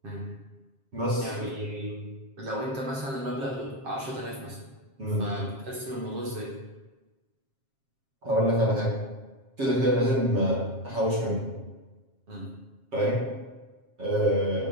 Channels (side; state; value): left; late; 7.5 ms